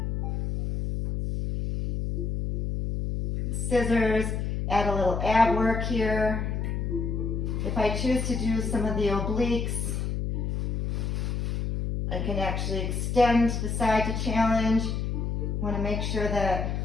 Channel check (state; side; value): noise; left; hum, 1 dB below the sound